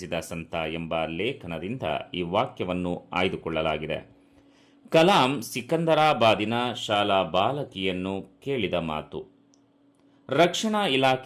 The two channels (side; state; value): both; identical; correlation 1.00